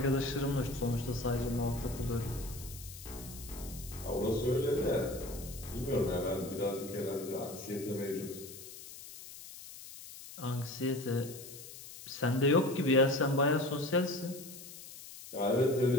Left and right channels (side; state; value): left; noise; hiss, 14 dB below the sound